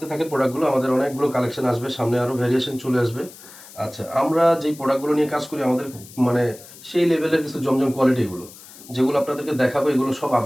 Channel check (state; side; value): noise; left; hiss, 19 dB below the sound